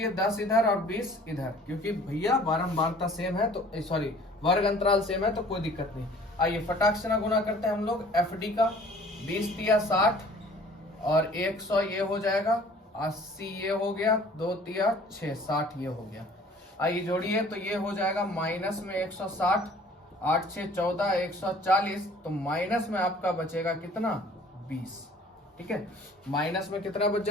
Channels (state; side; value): normal; both; correlation 0.51